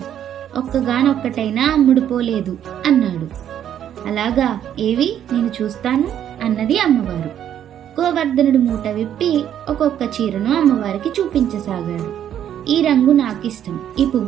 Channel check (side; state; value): left; quieter; 10.2 dB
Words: ఒక్కగానొక్కటైనా అమ్ముడుపోలేదు అన్నాడు. అలాగా, ఏవి నేను చూస్తాను అన్నది అమ్మవారు. గోవర్ధనుడు మూట విప్పి ఒక్కొక్క చీరను అమ్మవారికి చూపించసాగాడు. ఈ రంగు నాకిష్టం, ఈ